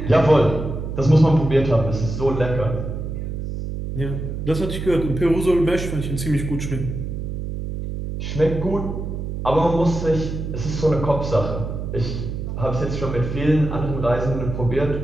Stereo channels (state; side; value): noise; right; hum, 5 dB below the sound